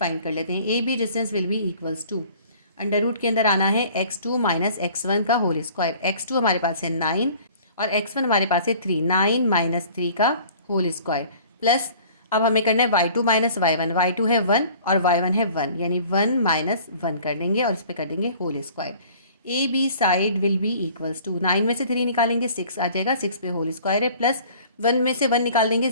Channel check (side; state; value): both; inverted; correlation -0.50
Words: कर लेते हैं। A B distance will be equals to, under root के अंदर आना है x2 माइनस x1 का होल स्क्वायर। x2 हमारे पास है 9 और x1 हमारे पास है 3, 9 माइनस 3 का होल स्क्वायर, प्लस अब हमें करना है y2 माइनस y1। y2 है 1 और y1 है 1, यानी 1 माइनस 1 कर देंगे और इस पर कर देंगे whole square. A B side will be equals to, 9 में से 3 निकालेंगे 6 आ जाएगा, 6 पे होल स्क्वायर है, प्लस 1 में से 1 निकाल देंगे